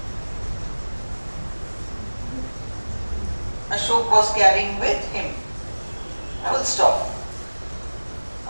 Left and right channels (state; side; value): inverted; both; correlation -1.00